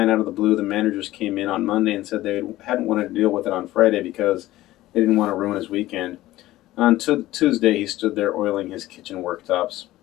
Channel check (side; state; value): right; quieter; 16.2 dB